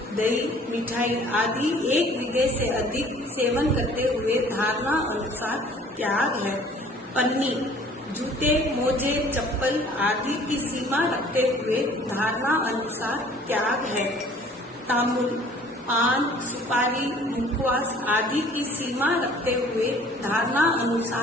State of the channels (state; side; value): normal; both; correlation 0.53